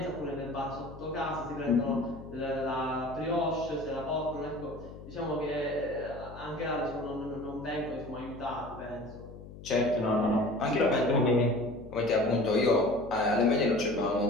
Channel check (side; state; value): left; noise; hum, 15 dB below the sound